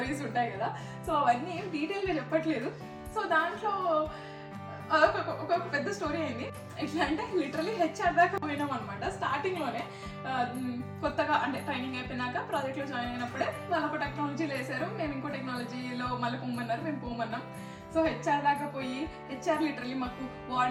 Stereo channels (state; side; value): identical; both; correlation 1.00